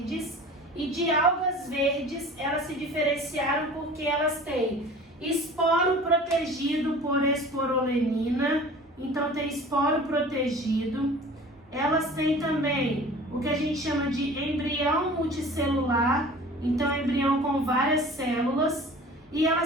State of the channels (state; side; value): normal; both; correlation 0.42